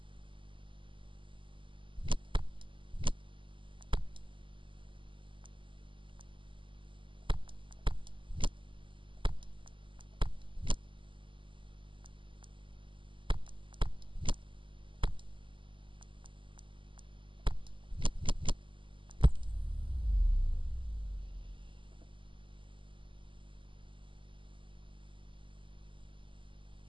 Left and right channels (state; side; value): late; left; 0.25 ms